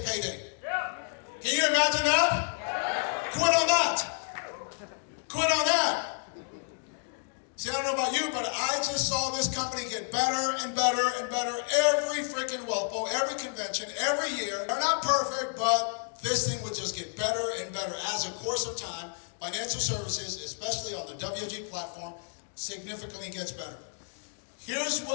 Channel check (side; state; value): right; silent; digital silence